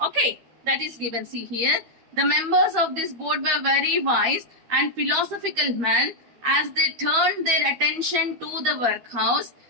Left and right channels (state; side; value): late; left; 13 ms